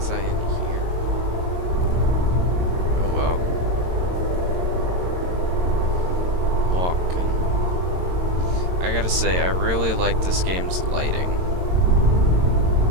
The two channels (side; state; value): left; late; 22 ms